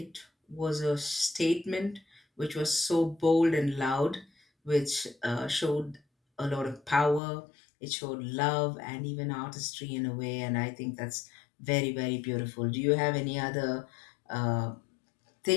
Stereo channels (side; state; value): right; drops out; at 7.2 s